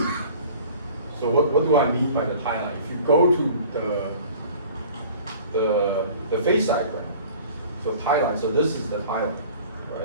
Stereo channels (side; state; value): both; inverted; correlation -0.47